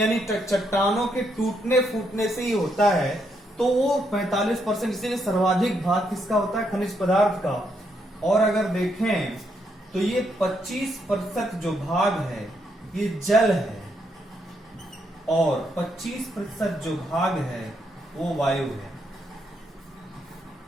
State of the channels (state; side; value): normal; both; correlation 0.77